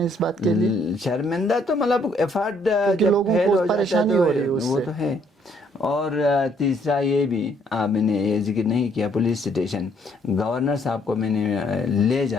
اس بات کے لیے؟ شرمندہ تو مطلب ایفرٹ لوگوں کو پریشانی ہو رہی ہے وہ تو ہے. اور تیسرا یہ بھی میں نے یہ ذکر نہیں کیا، پولیس اسٹیشن. گورنر صاحب کو میں نے لے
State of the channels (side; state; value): both; normal; correlation 0.67